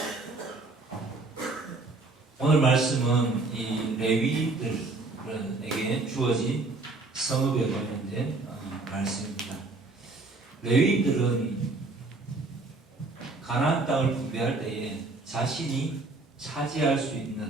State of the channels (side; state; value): left; quieter; 3.4 dB